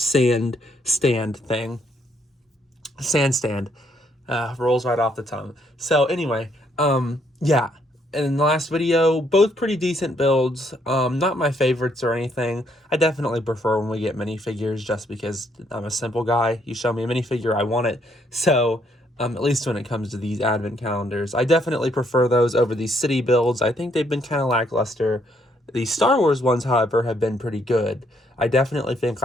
stand. Rolls right off the tongue. So, anyway, yeah. In the last video, both pretty decent builds. Not my favorites or anything. I definitely prefer when we get minifigures just because I'm a simple guy. You show me a minifigure, I want it. So, at least when it comes to these advent calendars, I definitely prefer those over these city builds. I think they've been kind of lackluster. The Star Wars ones, however, have been pretty good. I definitely think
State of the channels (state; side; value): normal; both; correlation 0.71